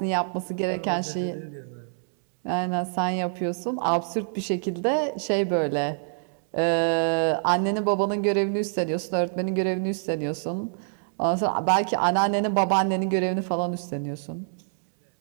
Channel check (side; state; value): left; silent; digital silence